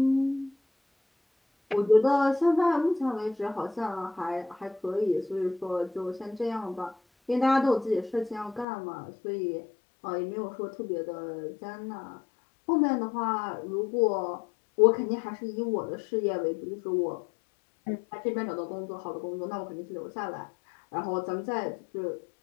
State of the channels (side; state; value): right; drops out; at 8.7 s